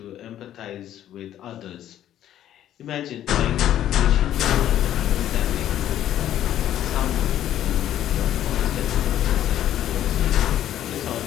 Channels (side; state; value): right; quieter; 11.7 dB